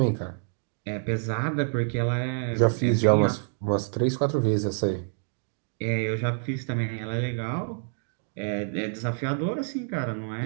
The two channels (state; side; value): silent; left; digital silence